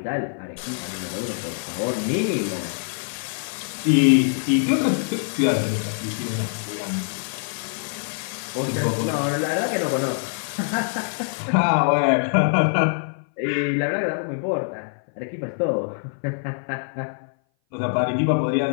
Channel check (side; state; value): right; silent; 58 dB below the other